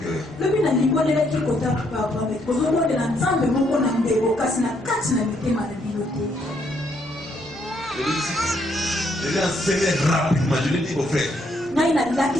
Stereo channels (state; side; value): normal; both; correlation 0.72